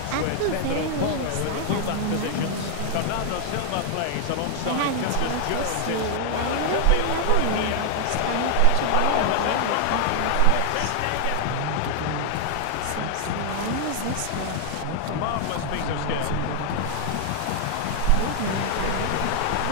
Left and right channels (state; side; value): different; both; correlation 0.00